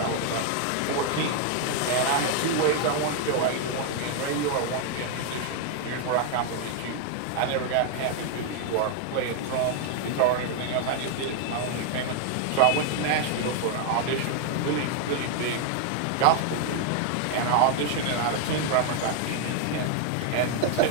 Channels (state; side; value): different; both; correlation 0.00